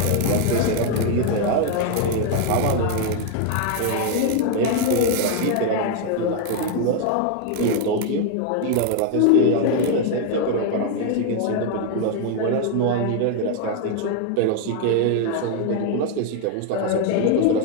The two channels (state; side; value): different; both; correlation 0.00